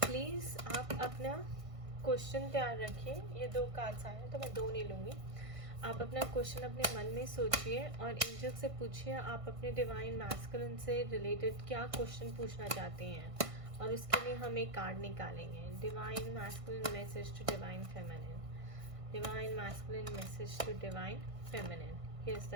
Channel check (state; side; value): late; left; 1.5 ms